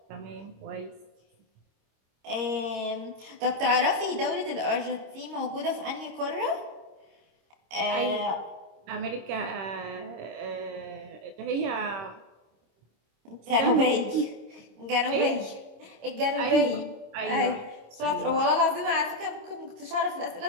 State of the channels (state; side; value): late; left; 26 ms